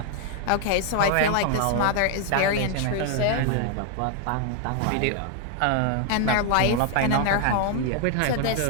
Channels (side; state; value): both; different; correlation 0.00